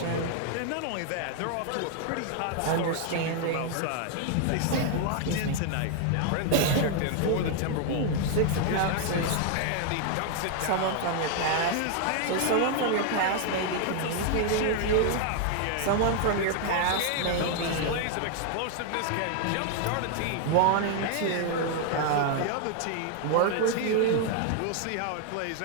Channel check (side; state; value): both; different; correlation 0.00